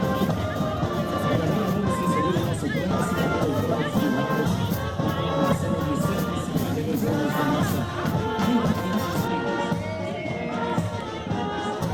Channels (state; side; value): identical; both; correlation 1.00